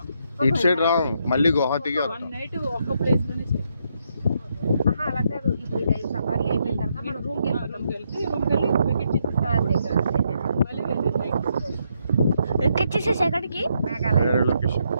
ఇటు సైడ్ రాము, మళ్ళీ గువాహటికి వన్ వెళ్తాం. నైట్ ఒక్క ప్లేస్ లోనే stay. అలా కాదు, ఇప్పుడు ఇది సఫారీ అయిపోయిన తర్వాత మనం రూమ్కి వెళ్ళిపోతాం. రూమ్కి వెళ్ళి వెకెట్ చేసేస్తాం. మళ్ళీ వెళ్ళి నైట్ ఎక్కడ చేసేసి ఎక్కడికి? మేఘాలయ. వేరే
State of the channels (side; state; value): both; inverted; correlation -0.77